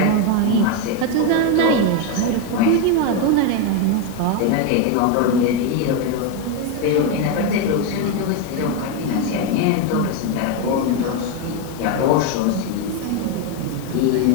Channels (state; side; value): different; both; correlation 0.02